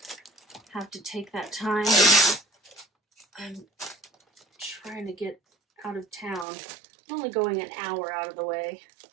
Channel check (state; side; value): drops out; left; at 6.5 s